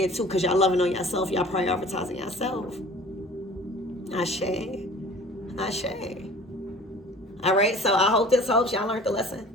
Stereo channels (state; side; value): normal; both; correlation 0.46